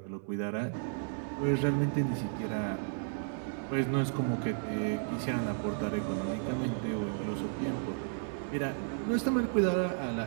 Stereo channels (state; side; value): silent; left; 56 dB below the other